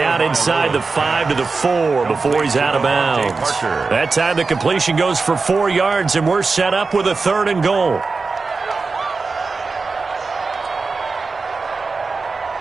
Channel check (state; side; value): quieter; left; 4.2 dB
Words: inside the 5 to the 4 before he's out of bounds. That time the completion goes for 4 yards, and we're set up with a 3rd and goal.